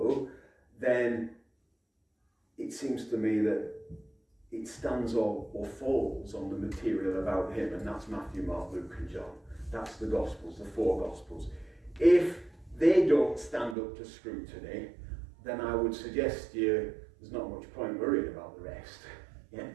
then it seems to me that it stands or falls on the material about him, and that's Matthew, Mark, Luke and John. That's the Gospels, the four Gospels. If they don't stand up to scrutiny, then I would suggest to you there's not much point worrying about the rest. Yeah?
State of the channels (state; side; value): drops out; left; at 13.8 s